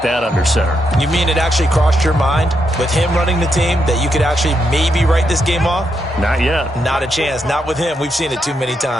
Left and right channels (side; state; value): both; normal; correlation 0.81